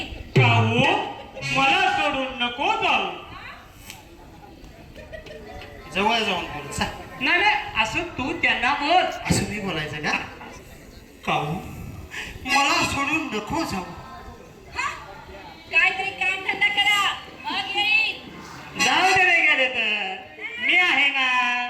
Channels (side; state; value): both; identical; correlation 1.00